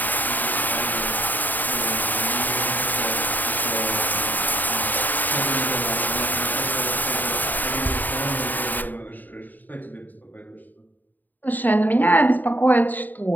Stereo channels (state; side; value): late; right; 0.087 ms